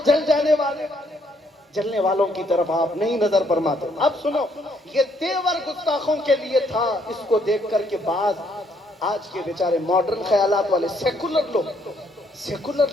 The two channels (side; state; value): both; normal; correlation 0.70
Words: جل جانے والے، جلنے والوں کی طرف آپ نہیں نظر فرماتے. اب سنو، یہ تیور گستاخوں کے لیے تھا. اس کو دیکھ کر کے بعض آج کے بیچارے ماڈرن خیالات والے سیکولر لوگ، سیکولر